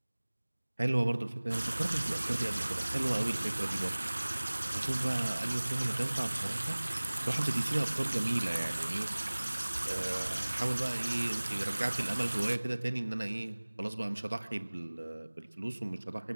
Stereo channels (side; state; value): both; inverted; correlation -1.00